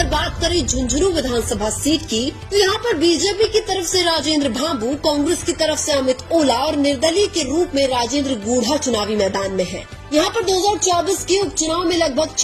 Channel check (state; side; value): identical; both; correlation 1.00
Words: बात करें झुंझुनू विधानसभा सीट की, तो यहाँ पर बीजेपी की तरफ से राजेंद्र भांबू, कांग्रेस की तरफ से अमित ओला और निर्दलीय के रूप में राजेंद्र गूढ़ा चुनावी मैदान में है। यहाँ पर 2024 के उपचुनाव में लगभग